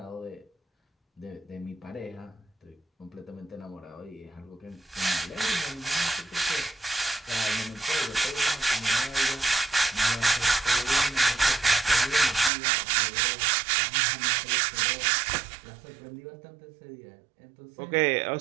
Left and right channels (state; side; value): drops out; left; at 12.5 s